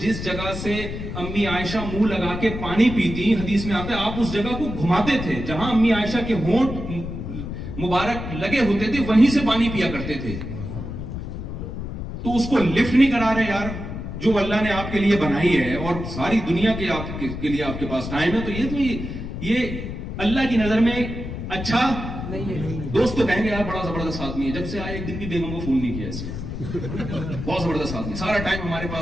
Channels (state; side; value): noise; left; rumble, 7 dB below the sound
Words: جگہ سے امی عائشہ منہ لگا کے پانی پیتی, حدیث میں آتا ہے آپ اس جگہ کو گھماتے تھے جہاں امی عائشہ کے ہونٹ مبارک لگے ہوتے تھے, وہیں سے پانی پیا کرتے تھے. تو اس کو لفٹ نہیں کرا رہے یار, جو اللہ نے آپ کے لیے بنائی ہے اور ساری دنیا کے لیے آپ کے پاس ٹائم ہے, تو یہ اللہ کی نظر میں اچھا دوست تو کہیں گے یار بڑا زبردست آدمی ہے, جب سے آئے ایک دن بھی بیگم کو فون نہیں کیا اس نے, بہت زبردست آدمی, سارا ٹائم ہمارے